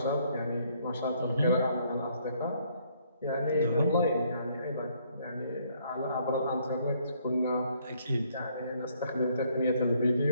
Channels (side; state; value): both; inverted; correlation -0.67